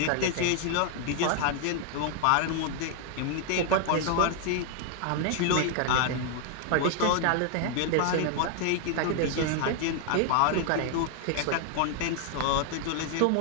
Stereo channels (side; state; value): both; different; correlation 0.00